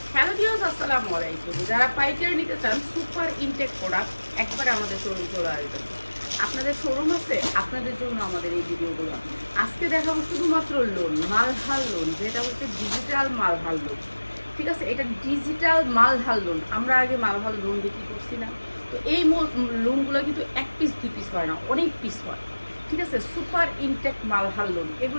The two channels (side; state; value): both; inverted; correlation -1.00